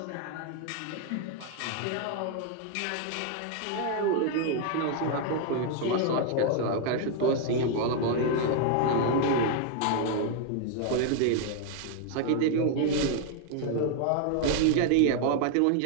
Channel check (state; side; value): different; both; correlation 0.00